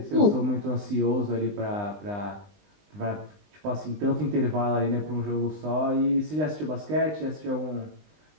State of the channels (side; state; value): left; late; 20 ms